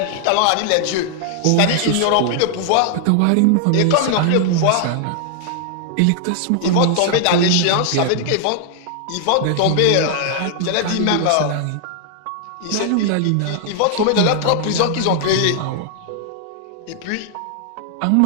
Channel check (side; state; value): both; different; correlation 0.00